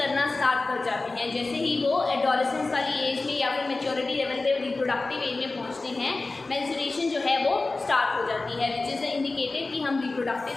स्टार्ट कर जाते हैं। जैसे ही वो एडोलेसेंस वाली एज में या फिर मैच्योरिटी लेवल पे रिप्रोडक्टिव एज में पहुंचते हैं, मेंस्ट्रुएशन जो है वो स्टार्ट हो जाती है, विच इज़ इंडिकेटेड कि हम रिप्रोडक्टिव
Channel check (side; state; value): right; quieter; 3.4 dB